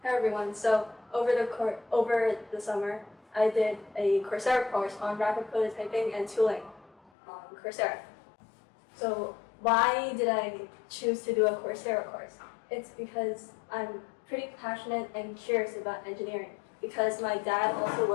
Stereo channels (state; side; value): drops out; right; at 7.1 s